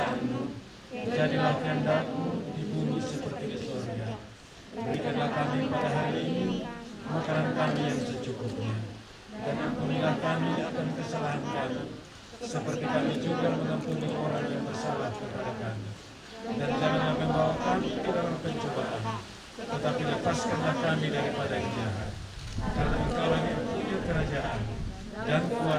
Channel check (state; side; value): identical; both; correlation 1.00